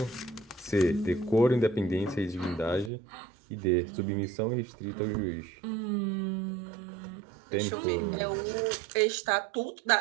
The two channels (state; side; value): drops out; left; at 2.9 s